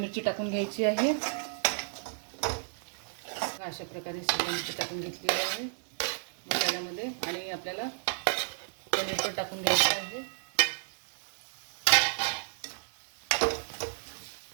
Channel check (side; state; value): left; silent; digital silence